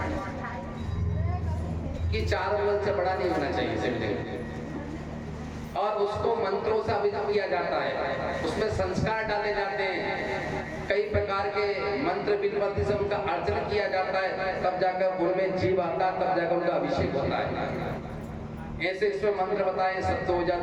कि 4 अंगुल से बड़ा नहीं होना चाहिए शिवलिंग, और उसको मंत्रों से अभिषेक किया जाता है, उसमें संस्कार डाले जाते हैं, कई प्रकार के मंत्र विधिवत से उनका अर्चन किया जाता है, तब जाकर उनमें जीव आता है, तब जाकर उनका अभिषेक होता है। ऐसे इसमें मंत्र बताए, सत्तो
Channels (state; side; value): identical; both; correlation 1.00